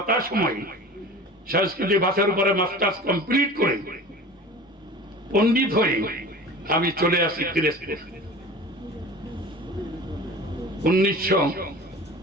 সংস্কৃতি ভাষার উপরে মাস্টার্স কমপ্লিট করে পণ্ডিত হয়ে আমি চলে আসি পিরোজপুর।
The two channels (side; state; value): both; normal; correlation 0.38